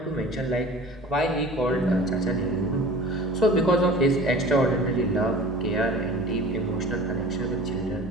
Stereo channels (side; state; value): both; normal; correlation 0.41